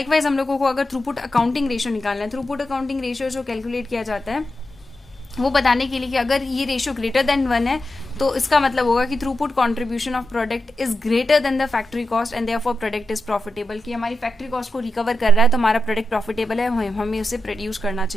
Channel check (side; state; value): both; normal; correlation 0.89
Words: हम लोगों को अगर थ्रूपुट अकाउंटिंग रेशियो निकालना है, थ्रूपुट अकाउंटिंग रेशियो जो कैलकुलेट किया जाता है वो बताने के लिए कि अगर ये रेशियो ग्रेटर देन 1 है तो इसका मतलब होगा कि throughput contribution of product is greater than the factory cost and therefore product is profitable, कि हमारी फैक्ट्री कॉस्ट को रिकवर कर रहा है तो हमारा प्रोडक्ट प्रॉफिटेबल है, हमें उसे प्रोड्यूस करना